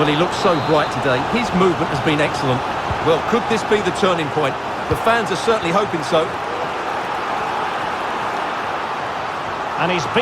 he looks so bright today. His movement has been excellent. Well, could this be the turning point? The fans are certainly hoping so. And he's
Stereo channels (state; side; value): identical; both; correlation 1.00